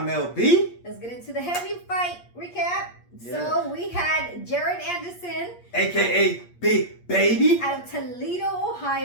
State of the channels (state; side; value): late; right; 8.5 ms